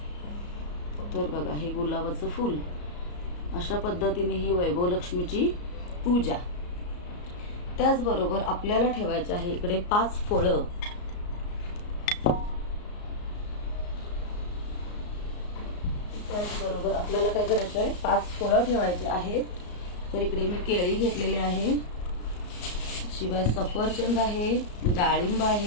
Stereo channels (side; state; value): right; late; 34 ms